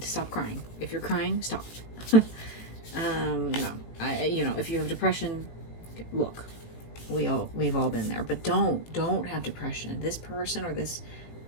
stop crying. If you're crying, stop. You know, if you have depression, look, we've all been there. But don't have depression. This person or this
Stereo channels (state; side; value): late; right; 18 ms